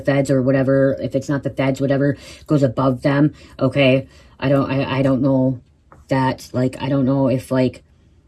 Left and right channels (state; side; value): identical; both; correlation 1.00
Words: feds or whatever, if it's not the feds, whatever goes above them, okay? I don't know that, like, I don't know if, like,